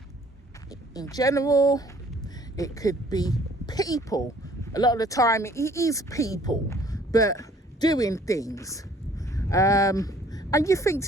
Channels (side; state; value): both; normal; correlation 0.57